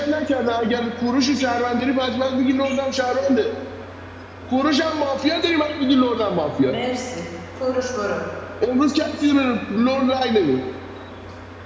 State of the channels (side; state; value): both; identical; correlation 1.00